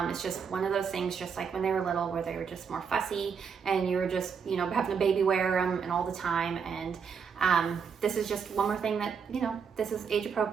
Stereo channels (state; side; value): quieter; left; 6.4 dB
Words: It's just one of those things, just like when they were little, where they were just more fussy and you were just, having a baby wear them and all the time. And this is just one more thing that, this is age